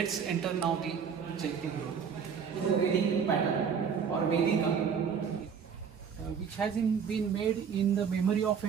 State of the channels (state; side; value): quieter; left; 6.8 dB